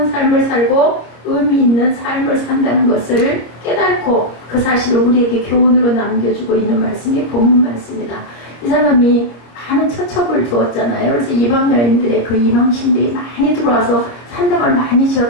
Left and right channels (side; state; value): right; late; 25 ms